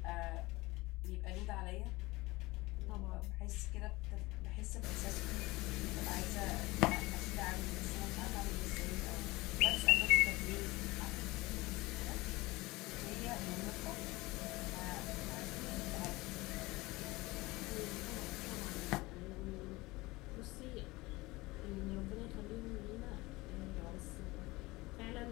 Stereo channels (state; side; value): quieter; right; 21.3 dB